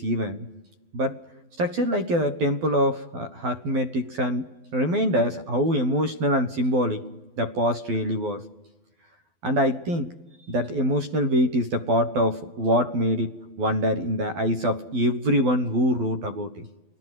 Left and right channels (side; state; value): left; late; 12 ms